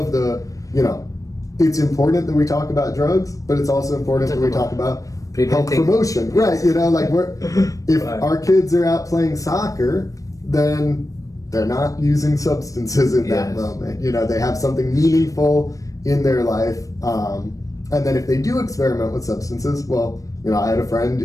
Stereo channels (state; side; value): late; right; 0.16 ms